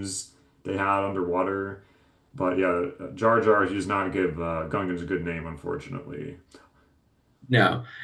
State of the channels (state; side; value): identical; both; correlation 1.00